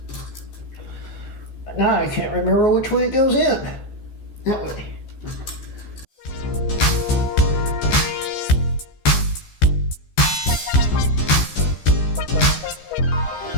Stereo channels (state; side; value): late; right; 14 ms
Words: Now I can't remember which way it goes in. That way.